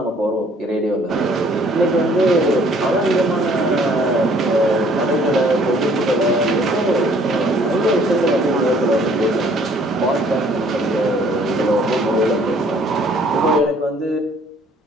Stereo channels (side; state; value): both; normal; correlation 0.59